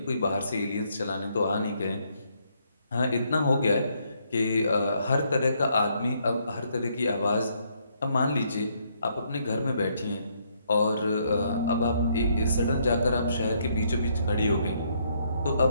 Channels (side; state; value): both; inverted; correlation -0.72